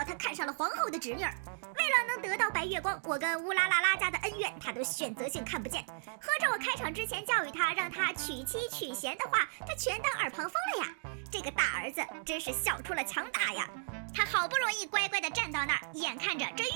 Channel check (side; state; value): left; silent; digital silence